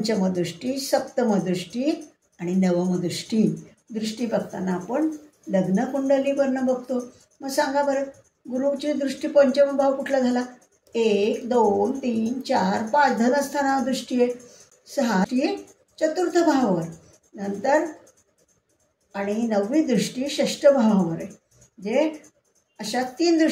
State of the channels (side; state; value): both; identical; correlation 1.00